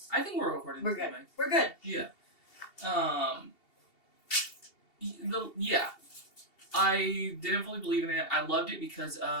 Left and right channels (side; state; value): right; late; 2.7 ms